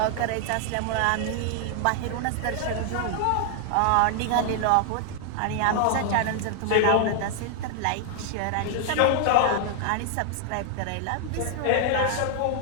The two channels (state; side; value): different; both; correlation 0.00